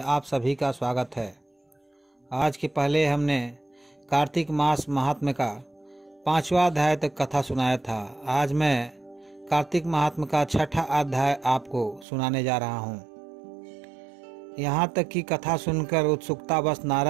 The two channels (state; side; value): drops out; left; at 12.1 s